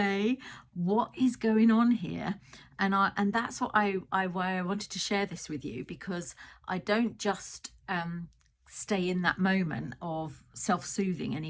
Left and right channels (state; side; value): identical; both; correlation 1.00